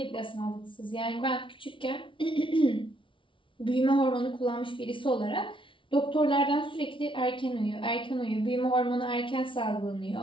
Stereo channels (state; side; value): late; right; 0.25 ms